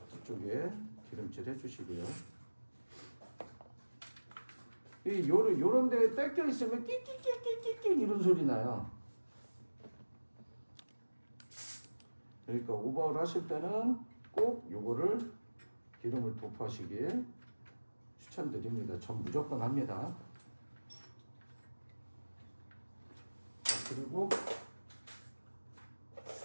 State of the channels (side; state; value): both; inverted; correlation -1.00